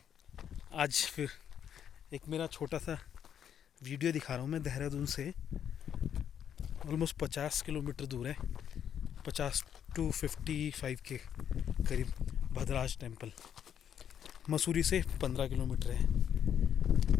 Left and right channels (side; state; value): right; quieter; 9.0 dB